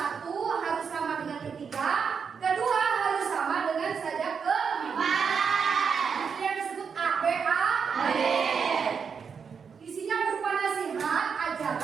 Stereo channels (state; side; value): quieter; left; 6.2 dB